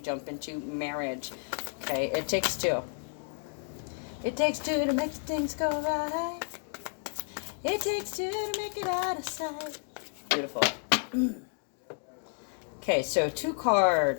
into marriage. Okay, it takes two. It takes two to make things go right. It takes two to make it out of sight. Beautiful. Okay, so two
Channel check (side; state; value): right; silent; 57 dB below the other